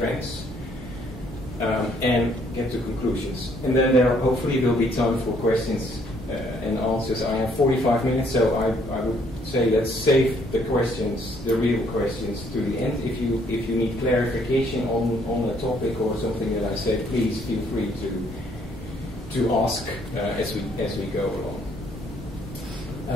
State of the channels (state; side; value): normal; both; correlation 0.66